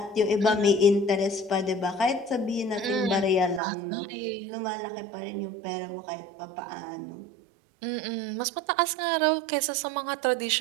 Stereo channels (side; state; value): left; drops out; at 3.6 s